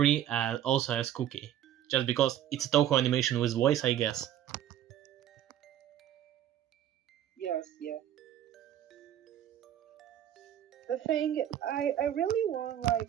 also as Cookie. Just because it's a Toho animation with voice, I guess. Yes, yeah. The thing, I really want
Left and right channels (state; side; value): quieter; left; 11.2 dB